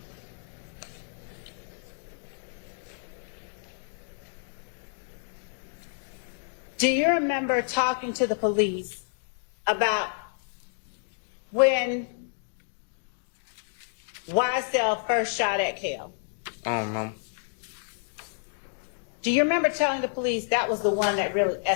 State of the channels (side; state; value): right; silent; digital silence